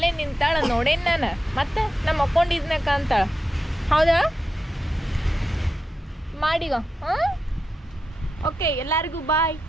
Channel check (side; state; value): both; normal; correlation 0.89